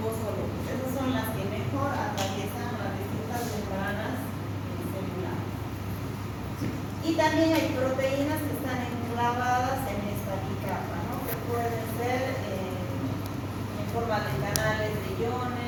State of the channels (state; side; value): identical; both; correlation 1.00